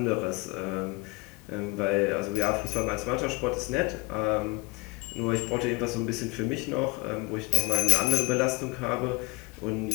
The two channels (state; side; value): quieter; right; 25.4 dB